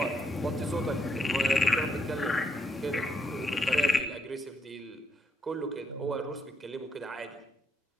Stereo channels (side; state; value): both; normal; correlation 0.77